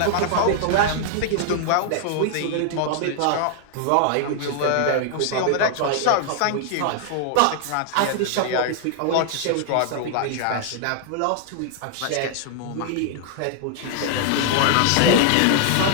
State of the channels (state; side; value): different; both; correlation 0.00